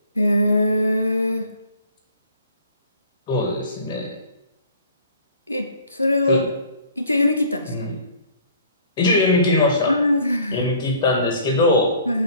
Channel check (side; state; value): both; inverted; correlation -0.52